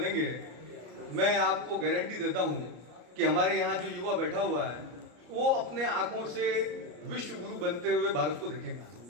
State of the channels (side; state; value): left; late; 34 ms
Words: मैं आपको गारंटी देता हूँ कि हमारे यहाँ जो युवा बैठा हुआ है वो अपने आंखों से विश्व गुरु बनते हुए भारत को देखेगा।